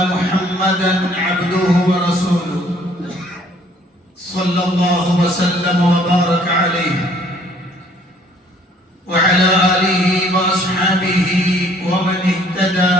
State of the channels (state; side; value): normal; both; correlation 0.60